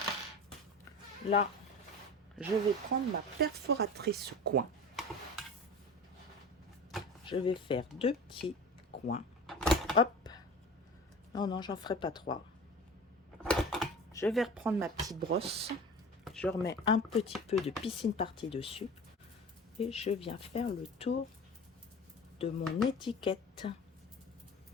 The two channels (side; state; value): both; normal; correlation 0.36